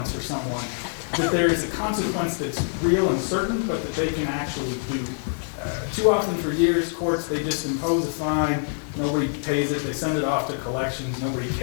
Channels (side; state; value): right; silent; digital silence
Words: for someone, that there is a consequence that's real and certain, but that they can actually do. Too often for years, courts, they just impose a fine, nobody pays it, they send it off to collections, nobody